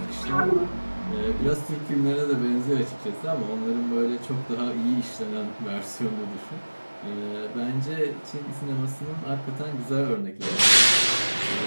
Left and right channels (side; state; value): both; inverted; correlation -1.00